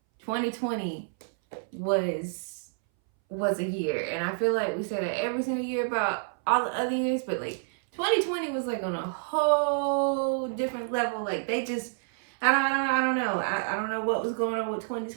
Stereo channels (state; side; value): silent; left; 59 dB below the other